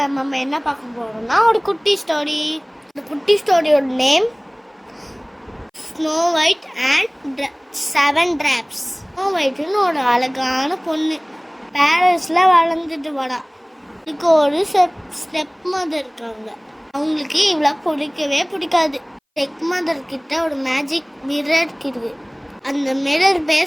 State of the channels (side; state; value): both; identical; correlation 1.00